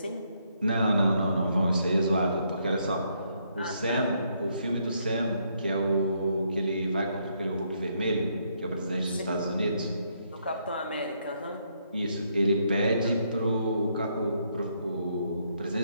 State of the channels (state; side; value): inverted; both; correlation -0.74